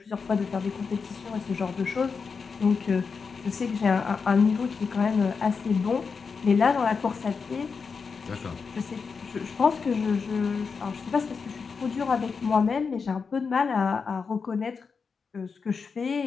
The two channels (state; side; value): quieter; right; 5.3 dB